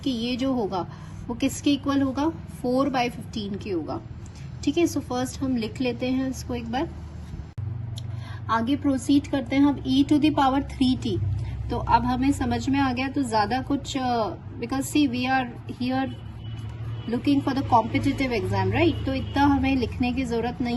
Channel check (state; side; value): identical; both; correlation 1.00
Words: कि ये जो होगा वो किसके इक्वल होगा, 4/15 के होगा, ठीक है। सो फर्स्ट हम लिख लेते हैं इसको एक बार, आगे प्रोसीड करते हैं हम e⁻3t। तो अब हमें समझ में आ गया, तो ज्यादा कुछ, because see we are here looking for the competitive exam, right. तो इतना हमें लिखने की जरूरत